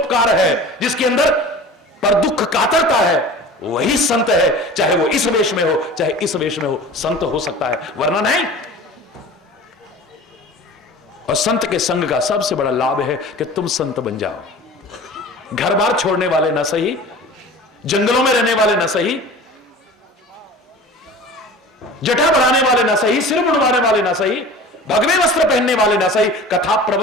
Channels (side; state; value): both; normal; correlation 0.39